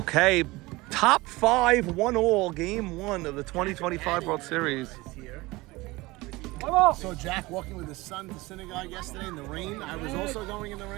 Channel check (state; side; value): quieter; left; 21.5 dB